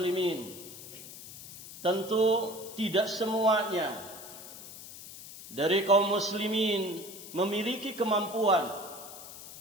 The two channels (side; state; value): left; noise; hiss, 14 dB below the sound